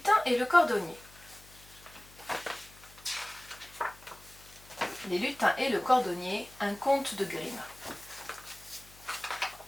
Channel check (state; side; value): noise; left; hum, 23 dB below the sound